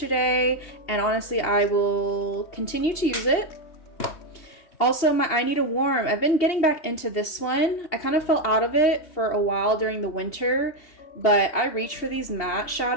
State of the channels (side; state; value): right; late; 2.7 ms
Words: and honestly, I will continue to use it. Also, my I Need a Warm. I've been getting back into this one. I kind of fell out of it for a while during the winter, but I reach for these matte